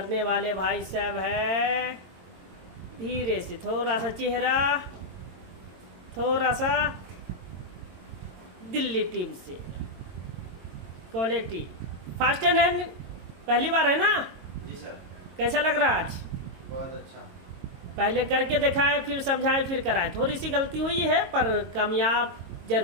वाले भाई साहब है धीरे से, थोड़ा सा चेहरा, थोड़ा सा दिल्ली टीम से। क्वालिटी फास्ट एंड हैंड पहली बार है ना जी सर। कैसा लग रहा है आज? बहुत अच्छा। पहले करके दिखाएं फिर समझाएं फिर कराएं। थोड़ी सी गलती हुई है पर कामयाब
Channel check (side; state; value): left; late; 22 ms